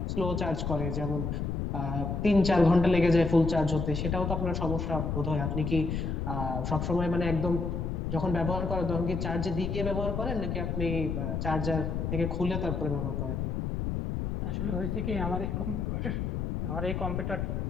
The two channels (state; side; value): noise; left; rumble, 2 dB below the sound